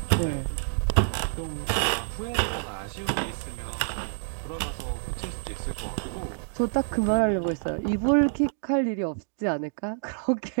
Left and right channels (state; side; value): silent; left; digital silence